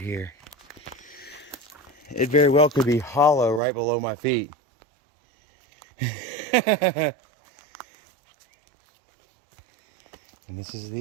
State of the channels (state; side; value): drops out; left; at 3.6 s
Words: It very well could be hollow right below my feet. And this is